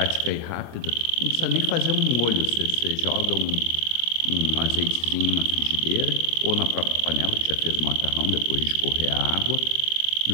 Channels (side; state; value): left; late; 26 ms